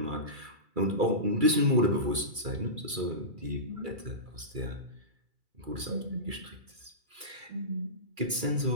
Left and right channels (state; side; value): late; left; 2.3 ms